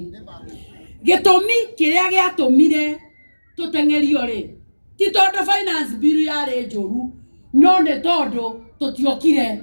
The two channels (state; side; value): inverted; both; correlation -1.00